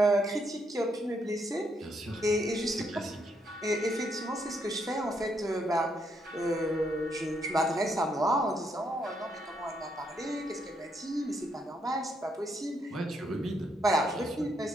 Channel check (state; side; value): normal; both; correlation 0.75